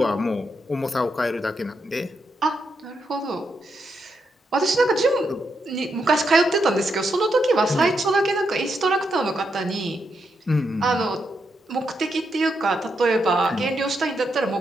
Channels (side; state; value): both; normal; correlation 0.81